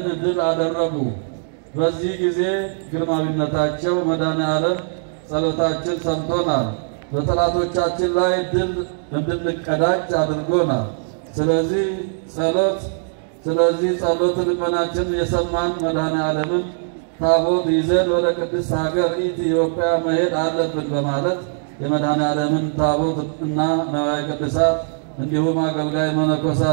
ድል አደረጉ። በዚህ ጊዜ ግርማዊነታቸው መድኃኔዓለም ጸሎታችን ሰምቶናል፣ በጠላቶቻችን ላይ ድል እንድንቀዳጅ አድርጎናል። ስለዚህ ጸሎት ልመናችን የሰማን መድኃኔዓለምን ታቦት ይዘን ወደ ቅድስት ሀገር ኢትዮጵያ መሄድ አለብን በማለት የመድኃኔዓለምን ታቦት እና ንዋየ ቅዱሳት እንዲሁም አገልጋይ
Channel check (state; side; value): silent; left; digital silence